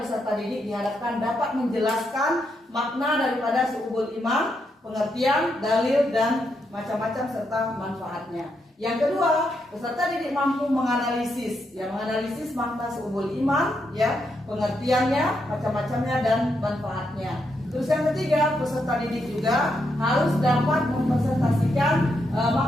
peserta didik diharapkan dapat menjelaskan makna daripada su'ubul iman, pengertian, dalil dan macam-macam serta manfaatnya. Yang kedua, peserta didik mampu menganalisis, ya menganalisis makna seubul iman, ya pengertiannya, macam-macamnya dan manfaatnya. Terus yang ketiga, peserta didik juga harus dapat mempresentasikan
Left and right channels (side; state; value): both; normal; correlation 0.81